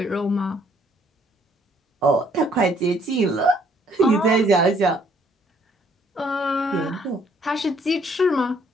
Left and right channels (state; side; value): normal; both; correlation 0.65